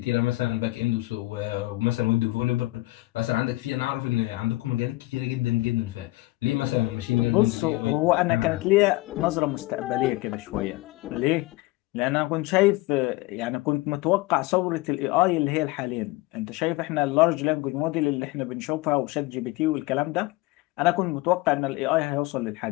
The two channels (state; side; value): quieter; right; 20.3 dB